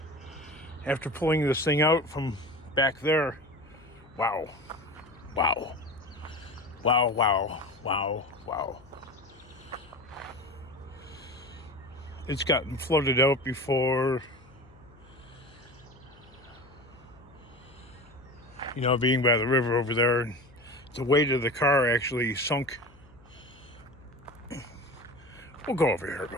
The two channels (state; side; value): noise; left; hum, 25 dB below the sound